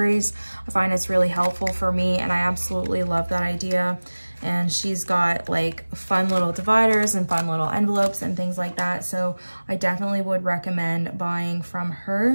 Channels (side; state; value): both; inverted; correlation -1.00